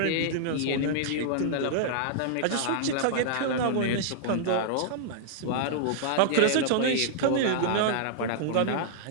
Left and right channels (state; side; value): different; both; correlation -0.01